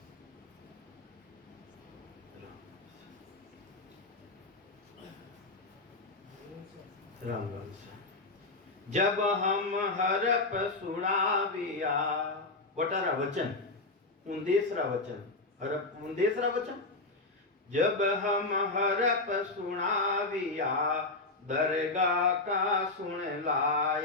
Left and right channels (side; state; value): right; quieter; 3.2 dB